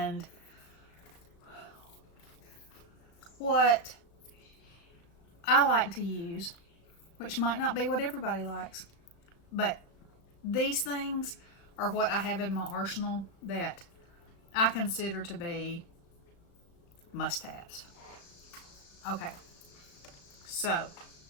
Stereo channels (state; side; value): late; right; 36 ms